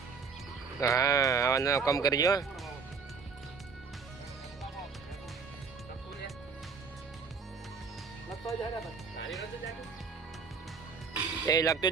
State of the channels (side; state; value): left; quieter; 5.3 dB